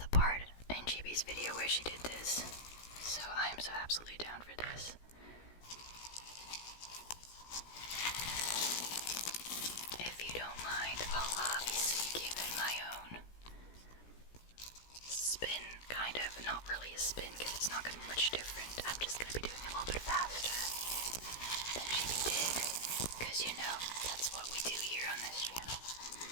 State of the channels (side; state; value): right; late; 17 ms